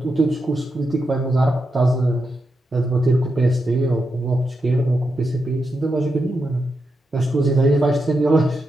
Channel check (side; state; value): both; normal; correlation 0.86